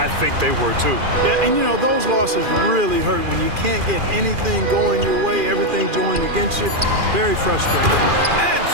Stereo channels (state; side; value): late; left; 2.4 ms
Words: think they were too. Yeah, and you know, those losses really hurt when you can't get anything going your way, everything going against you. Very frustrating. And